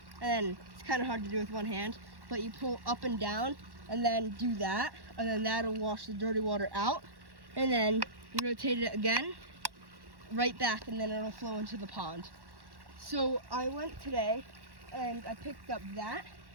and then it's kind of hard to do with one hand, but you pull up and down and then do that, and then that'll wash the dirty water out, and then you rotate it again, right back, and then it'll flow into the pond. So I went today and I picked up that,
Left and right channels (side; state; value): left; late; 1.1 ms